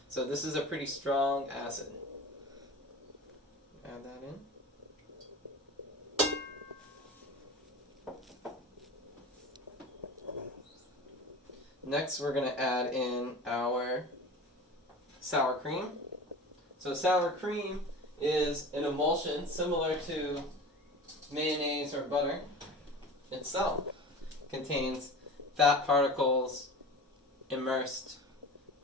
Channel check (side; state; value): both; normal; correlation 0.35